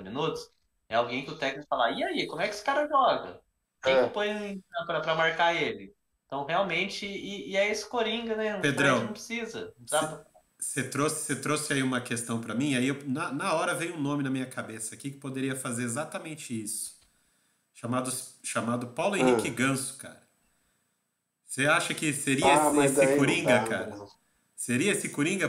minutos. É alguém que o técnico fala, e aí, como é que esse cara joga? Quem que eu ponho para marcar ele? Então, realmente, e é esse Coringa, né? O Fred não Pedrão, precisa. Não dá você trouxe aí uma questão para mim, aí na hora veio um nome na minha cabeça aqui que poderia fazer exatamente isso. Chamado Paulo Henrique Ah, Ganso, cara. Você acha que seria esse, mas esse daí não Coringa, dá, cara? não. Seria esse Coringa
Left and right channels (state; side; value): identical; both; correlation 1.00